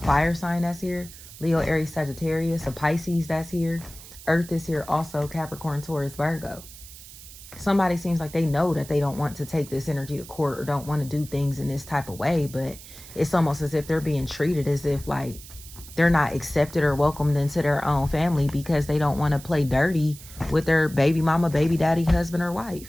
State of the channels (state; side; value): noise; right; hiss, 17 dB below the sound